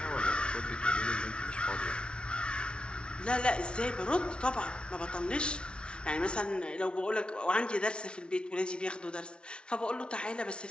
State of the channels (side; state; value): right; late; 0.057 ms